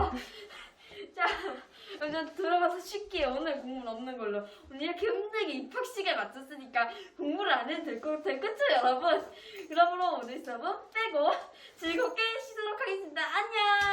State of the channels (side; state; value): both; identical; correlation 1.00